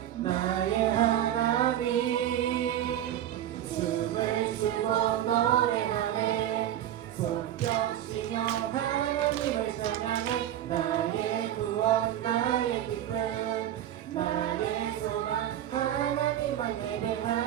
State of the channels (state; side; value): quieter; left; 11.6 dB